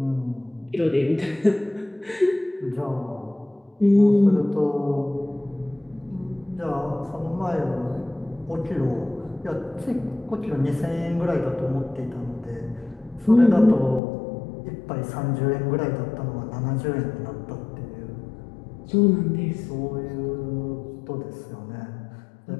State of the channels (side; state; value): right; drops out; at 14.0 s